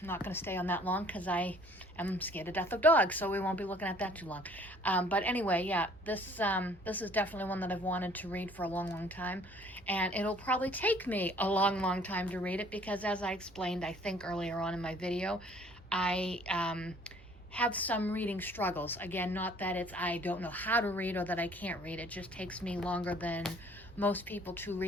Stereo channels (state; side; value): normal; both; correlation 0.56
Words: not going to stay on that long because I am scared to death of dogs, so we won't be looking at that too long. But anyway, yeah, this is definitely one that I've wanted to read for a long, long time, and it'll probably take me a long, long time to read it because, as I explained, I think earlier on in my video, I have some reading struggles. Again, not that I don't know how to read or that I can't read. It just takes me longer than most people to